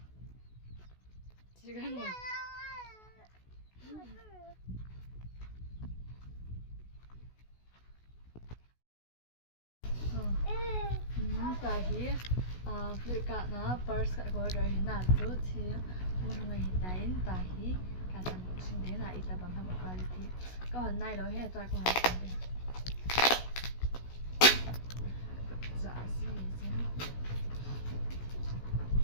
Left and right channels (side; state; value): right; late; 16 ms